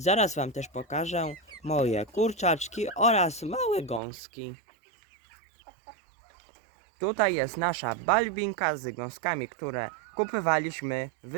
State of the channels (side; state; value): left; drops out; at 4.0 s